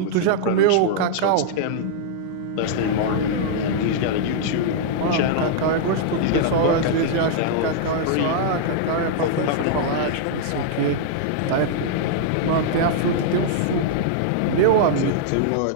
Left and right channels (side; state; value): both; different; correlation -0.01